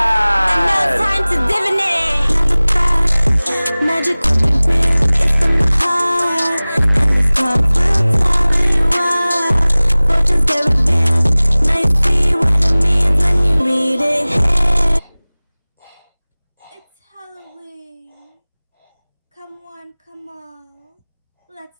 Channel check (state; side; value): inverted; both; correlation -0.99